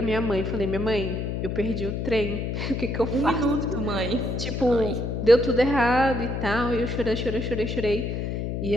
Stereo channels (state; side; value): noise; left; hum, 2 dB below the sound